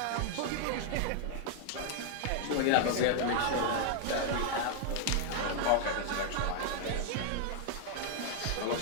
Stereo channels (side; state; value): both; different; correlation 0.00